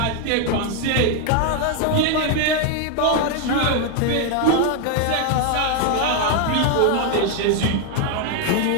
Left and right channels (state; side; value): different; both; correlation 0.01